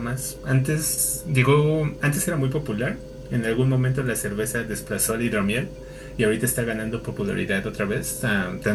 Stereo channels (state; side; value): identical; both; correlation 1.00